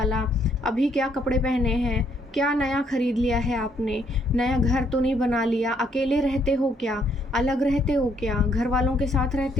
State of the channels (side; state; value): both; normal; correlation 0.69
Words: अभी क्या कपड़े पहने हैं, क्या नया ख़रीद लिया है आपने, नया घर तो नहीं बना लिया, अकेले रहते हो क्या, अलग रहते हो क्या, घर वालों के साथ